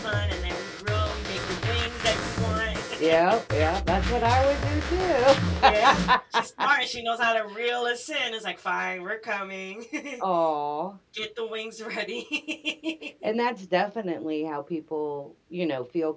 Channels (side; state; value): both; identical; correlation 1.00